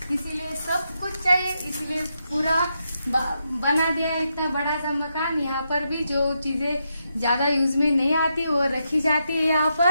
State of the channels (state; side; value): inverted; both; correlation -0.83